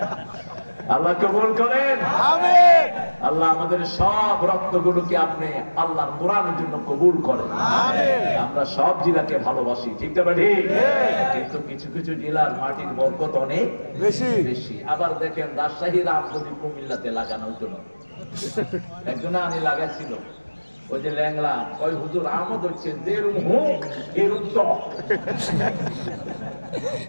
আল্লাহ কবুল করেন। আল্লাহ আমাদের সব রক্তগুলোকে আপনি আল্লাহর কোরআনের জন্য কবুল করেন। আমরা সব জেলাকে ভালোবাসি, ঠিক না ঠিক? কিন্তু কিছু কিছু জেলার মাটির বরকত অনেক বেশি। আবার দেখেন রাজশাহীর আম যদি কুমিল্লাতে লাগানো হতো না। একজন আনি লাগাইছিল, ওই যে ল্যাংলা ওই হুজুর আমদ হচ্ছে যেরুম হোক এরুম টক।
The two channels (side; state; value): both; inverted; correlation -1.00